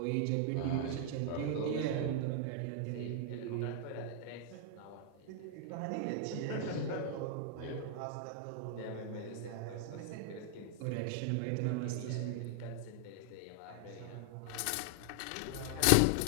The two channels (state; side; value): different; both; correlation 0.00